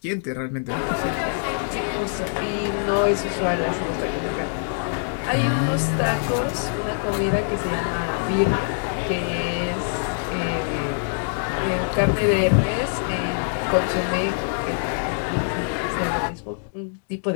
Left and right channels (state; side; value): silent; right; digital silence